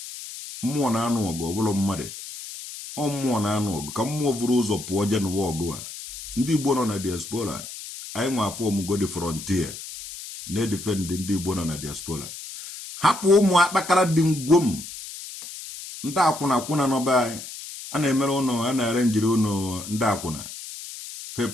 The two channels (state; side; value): noise; left; hiss, 11 dB below the sound